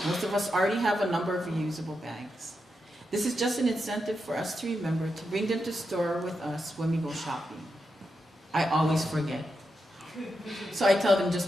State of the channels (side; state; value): both; normal; correlation 0.86